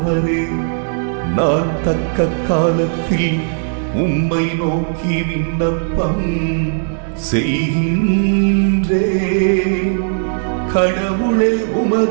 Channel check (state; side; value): silent; left; digital silence